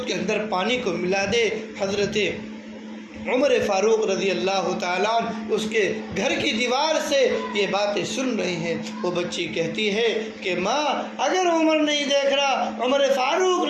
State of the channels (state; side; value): identical; both; correlation 1.00